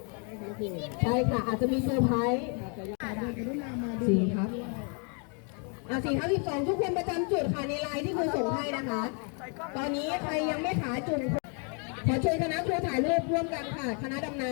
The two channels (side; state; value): right; quieter; 38.5 dB